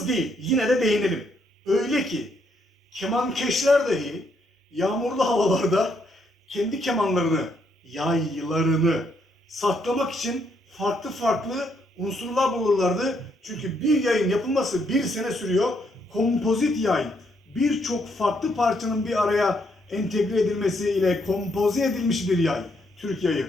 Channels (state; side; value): normal; both; correlation 0.74